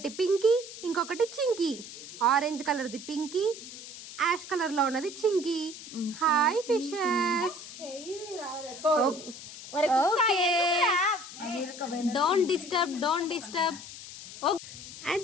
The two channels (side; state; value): left; noise; hiss, 13 dB below the sound